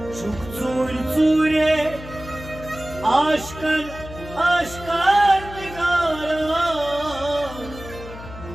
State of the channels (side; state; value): left; noise; hum, 14 dB below the sound